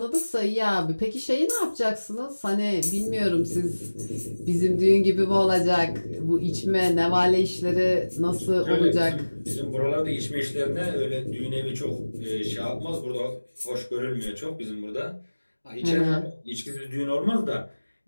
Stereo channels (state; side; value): inverted; both; correlation -1.00